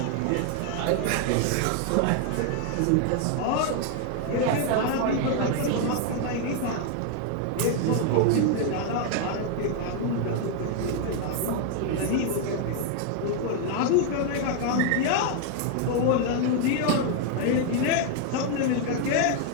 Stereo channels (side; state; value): both; different; correlation 0.00